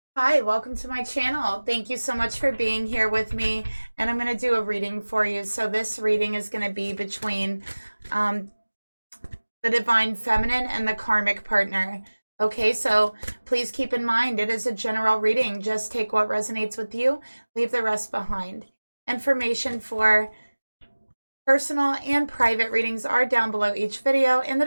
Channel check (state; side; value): inverted; both; correlation -1.00